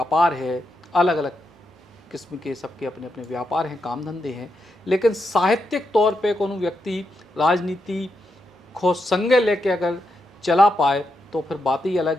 है, अलग अलग किस्म के सबके अपने अपने व्यापार हैं, काम धंधे हैं। लेकिन साहित्यिक तौर पे कोनो व्यक्ति राजनीति को संगे लेके अगर चला पाए तो फिर बात ही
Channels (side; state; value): both; normal; correlation 0.84